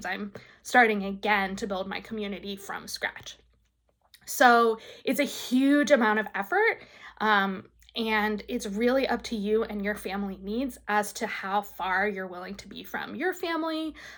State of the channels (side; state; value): both; identical; correlation 1.00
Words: I'm starting again to build my community from scratch. So it's a huge amount of effort. And it's really up to you and your family needs as to how far you're willing to be from your family,